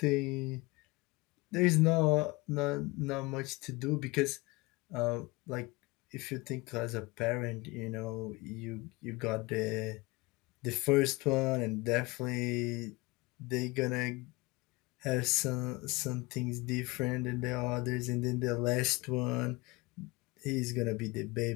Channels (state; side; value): quieter; right; 23.7 dB